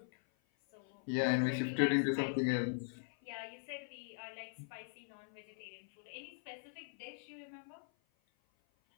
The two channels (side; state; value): right; silent; 51 dB below the other